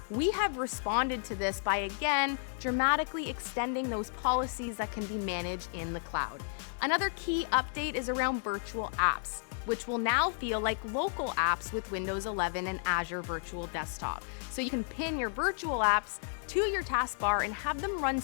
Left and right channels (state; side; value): silent; right; digital silence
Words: we have responded to this by again dramatically extending those policies that can be managed in the cloud. Another key update is around virtual apps, which will now feel like local apps with Windows 11 and Azure Virtual Desktop. So you can pin your virtual apps to your taskbar and have them run